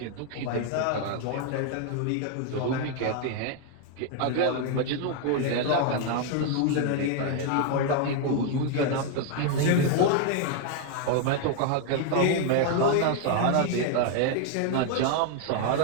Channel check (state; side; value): different; both; correlation 0.00